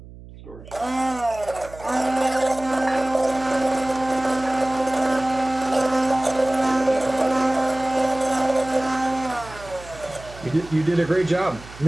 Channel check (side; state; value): right; noise; hum, 18 dB below the sound